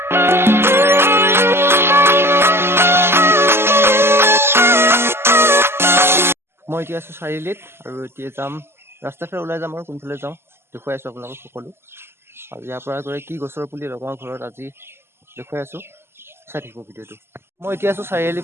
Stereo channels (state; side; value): late; left; 0.12 ms